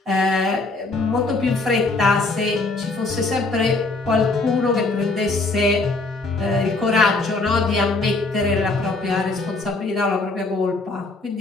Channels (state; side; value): quieter; right; 3.4 dB